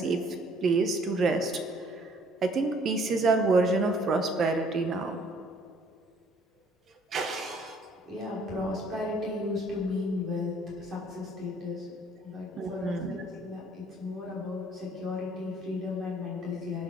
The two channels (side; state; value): both; normal; correlation 0.60